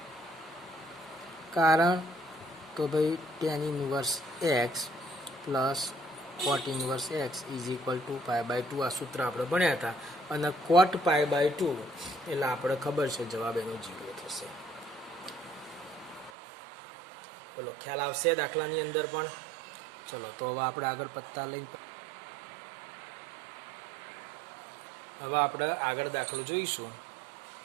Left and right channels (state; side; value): drops out; left; at 16.3 s